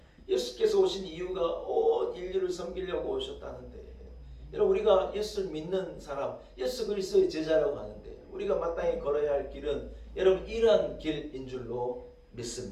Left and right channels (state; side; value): identical; both; correlation 1.00